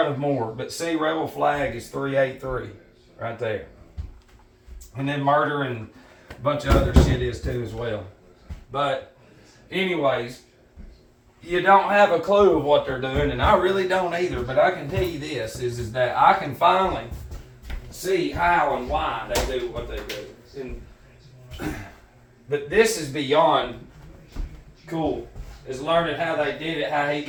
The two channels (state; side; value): identical; both; correlation 1.00